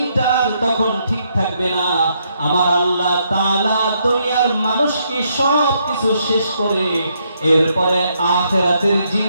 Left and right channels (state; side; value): inverted; both; correlation -0.75